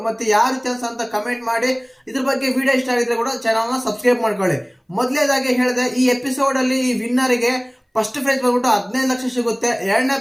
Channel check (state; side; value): identical; both; correlation 1.00